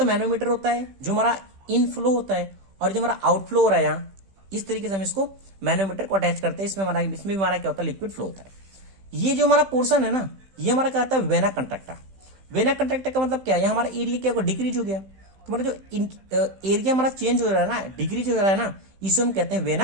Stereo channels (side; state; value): left; late; 16 ms